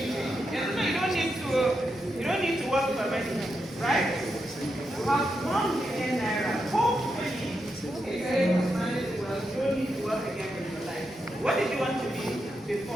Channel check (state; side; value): normal; both; correlation 0.85